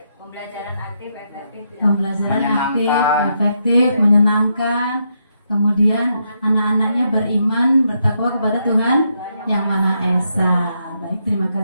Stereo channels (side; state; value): both; inverted; correlation -0.79